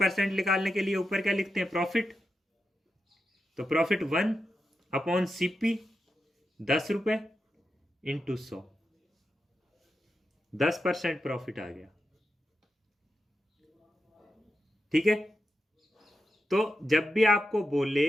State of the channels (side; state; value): both; normal; correlation 0.88